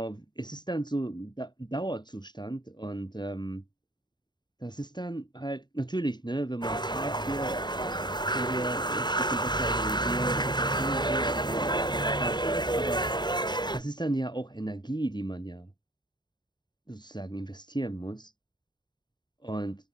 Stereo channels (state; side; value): late; right; 0.21 ms